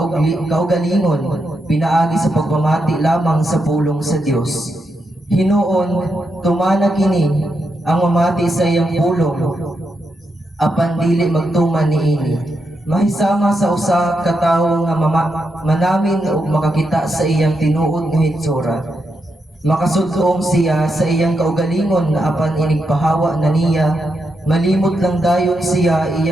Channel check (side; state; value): both; normal; correlation 0.84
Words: kaugalingon pinaagi sa pagpamati lamang sa pulong sa Dios. Hinuon tumana kini ang mamati sa iyang pulong apan dili magtuman niini. Mahisama sa usa ka tawo nga manamin ug makakita sa iyang tinuod nga hitsura. Makasudlong siya sa iyang kaugalingon na apan inigpahawa na niya, malimot lang dayon siya